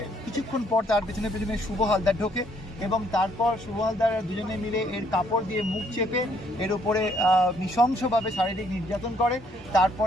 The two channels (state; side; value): normal; both; correlation 0.67